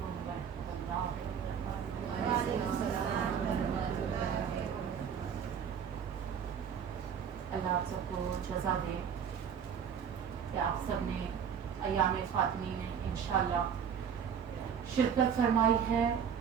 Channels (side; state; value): left; quieter; 7.6 dB